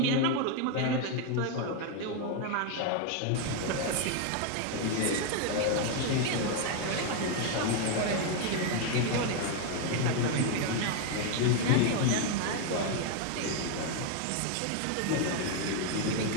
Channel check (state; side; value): different; both; correlation 0.01